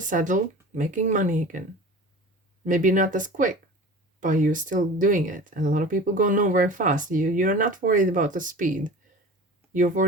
saddle making money again. Maybe not as quick, but you're still doing it. And a lot of people go nowhere fast. You're not worried about the speed. You're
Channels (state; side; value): normal; both; correlation 0.37